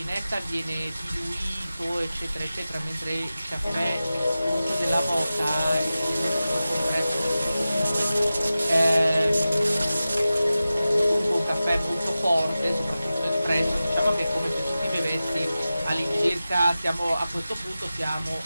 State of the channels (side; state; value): both; inverted; correlation -0.95